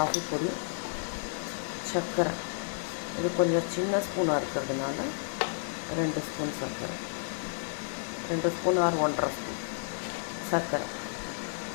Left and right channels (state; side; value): silent; right; digital silence